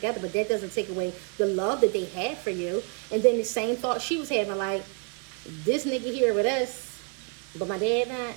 But that doesn't take away the love that they had for you. And then the same thought she was having, like, this nigga here with us, but my dad not.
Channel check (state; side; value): quieter; left; 34.6 dB